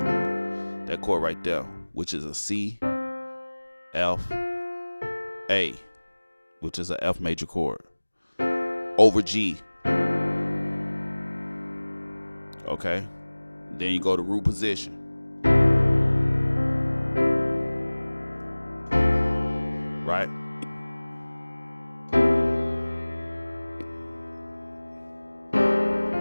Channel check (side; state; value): both; inverted; correlation -1.00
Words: chord right there, which is a C, F, A, which is a F major chord, over G. Okay. Then you go to root position. Right?